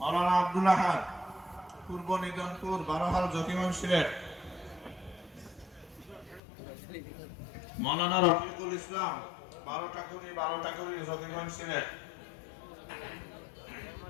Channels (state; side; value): drops out; right; at 6.4 s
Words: আব্দুল আহাদ পূর্ব নিদনপুর বারোহাল জকিগঞ্জ ছিলেন মৌলানা রফিকুল ইসলাম বারোটাকুড়ি জকিগঞ্জ ছিলেন